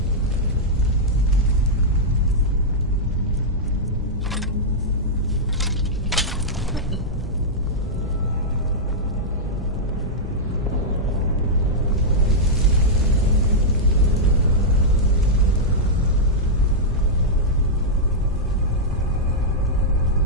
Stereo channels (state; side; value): normal; both; correlation -0.08